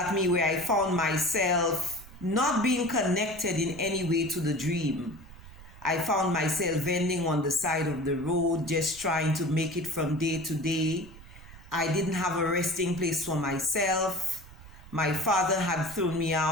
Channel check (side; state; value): right; noise; rumble, 18 dB below the sound